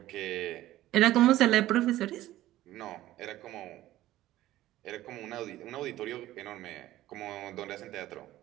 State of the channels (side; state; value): left; quieter; 15.0 dB